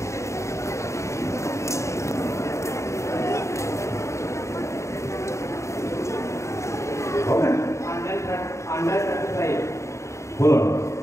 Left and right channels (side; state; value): right; late; 0.14 ms